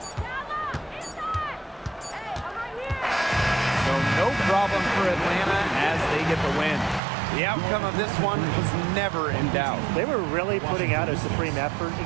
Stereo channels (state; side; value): drops out; left; at 7.0 s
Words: So no problem for Atlanta as they get the win. The outcome of this one was never in doubt. They were really putting out a supreme effort, and